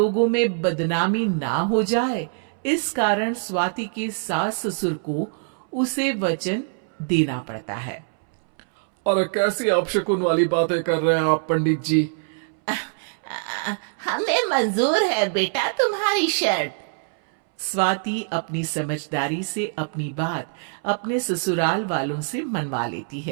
में बदनामी ना हो जाए, इस कारण स्वाति के सास ससुर को उसे वचन देना पड़ता है। और कैसी अपशकुन वाली बातें कर रहे हैं आप पंडित जी? हमें मंजूर है बेटा तुम्हारी शर्त। स्वाति अपनी समझदारी से अपनी बात अपने ससुराल वालों से मनवा लेती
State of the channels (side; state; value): left; silent; 63 dB below the other